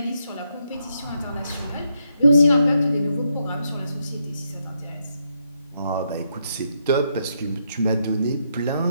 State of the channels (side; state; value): both; inverted; correlation -0.78